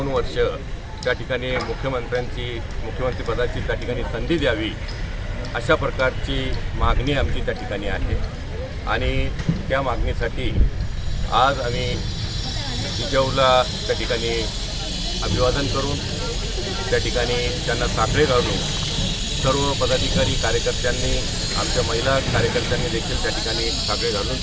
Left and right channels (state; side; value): identical; both; correlation 1.00